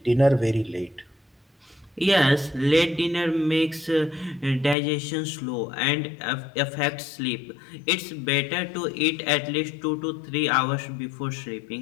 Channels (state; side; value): drops out; right; at 4.8 s